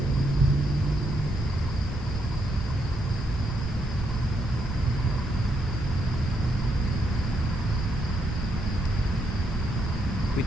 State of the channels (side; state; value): both; normal; correlation 0.78